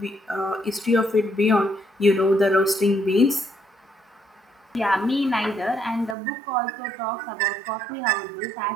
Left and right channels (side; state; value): left; drops out; at 6.2 s